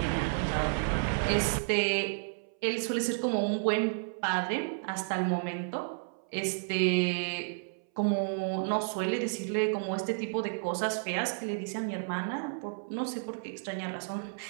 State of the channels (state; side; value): silent; left; 57 dB below the other